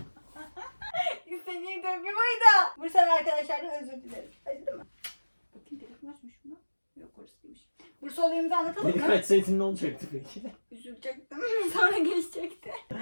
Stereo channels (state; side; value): inverted; both; correlation -1.00